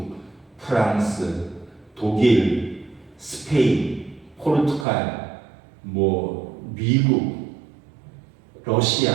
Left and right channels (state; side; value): drops out; left; at 4.9 s